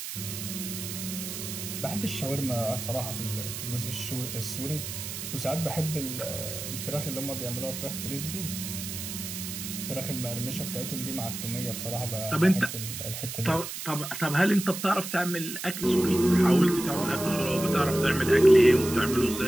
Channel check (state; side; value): noise; right; hiss, 7 dB below the sound